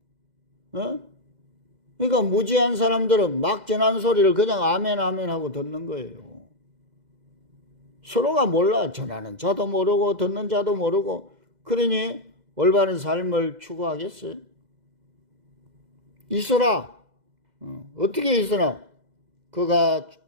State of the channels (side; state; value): left; late; 2.0 ms